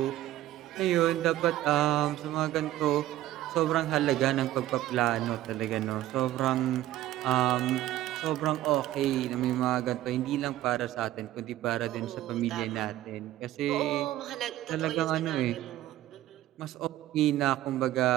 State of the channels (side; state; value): left; quieter; 14.3 dB